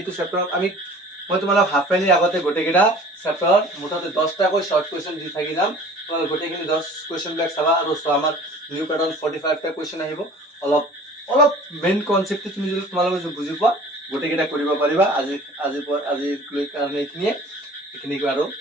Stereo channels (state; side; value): normal; both; correlation 0.46